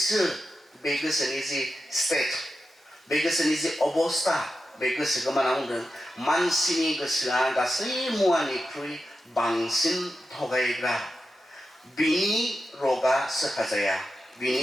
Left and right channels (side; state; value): both; normal; correlation 0.90